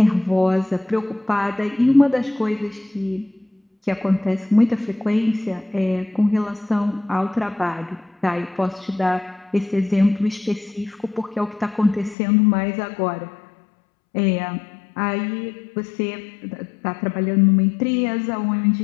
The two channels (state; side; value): drops out; right; at 12.2 s